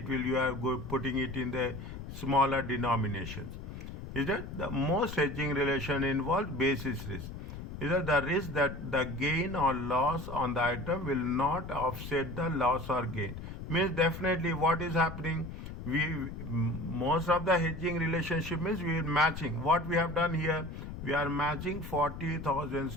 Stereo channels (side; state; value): left; noise; rumble, 9 dB below the sound